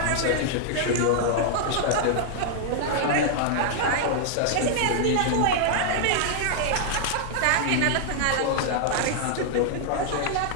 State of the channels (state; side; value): different; both; correlation -0.01